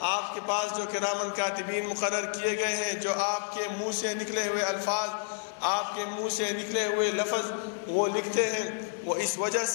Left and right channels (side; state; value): right; silent; 58 dB below the other